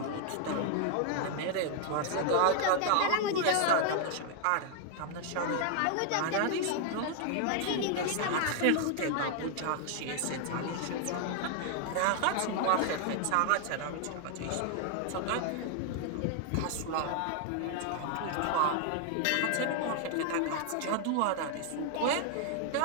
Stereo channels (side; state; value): both; different; correlation 0.00